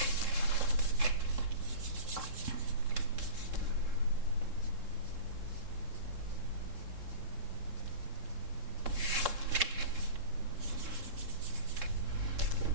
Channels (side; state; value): left; late; 3.7 ms